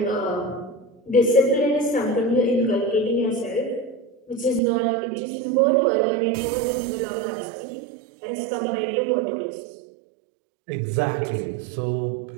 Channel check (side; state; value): left; drops out; at 4.6 s